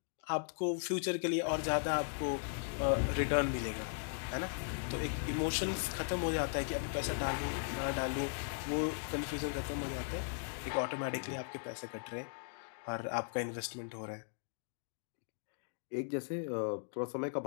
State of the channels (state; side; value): silent; right; digital silence